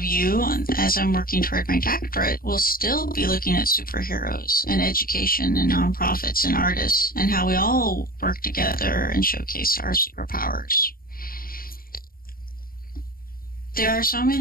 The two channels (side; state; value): right; late; 0.42 ms